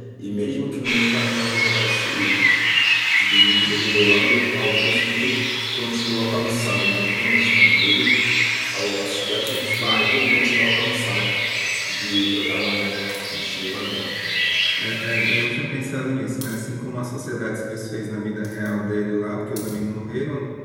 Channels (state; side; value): identical; both; correlation 1.00